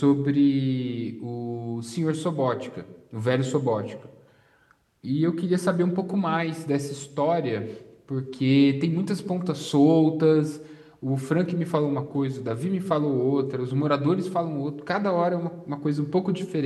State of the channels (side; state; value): both; identical; correlation 1.00